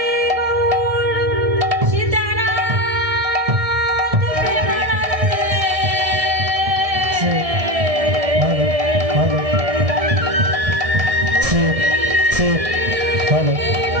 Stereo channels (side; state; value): left; late; 1.7 ms